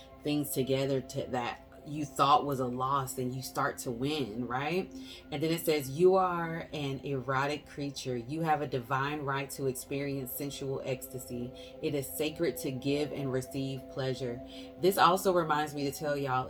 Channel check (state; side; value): identical; both; correlation 1.00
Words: things together to that you thought was a loss, and you start to win, right? And then it says, you are an erotic creature. You have a divine right to experience sensual ecstasy. It is sacred to give and receive pleasure. This also reminds me to tell y'all,